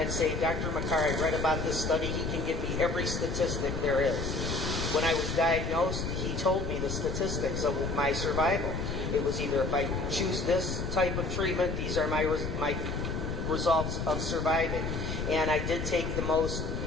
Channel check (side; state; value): left; noise; rumble, 4 dB below the sound